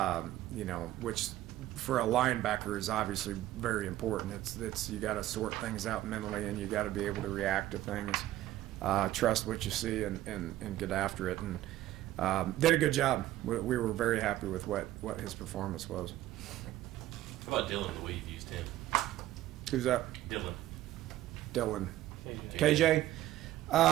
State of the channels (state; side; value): quieter; left; 14.5 dB